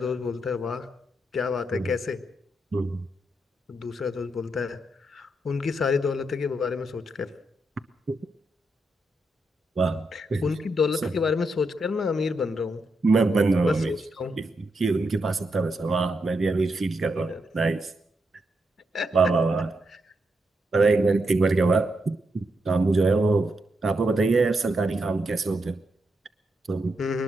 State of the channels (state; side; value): normal; both; correlation 0.83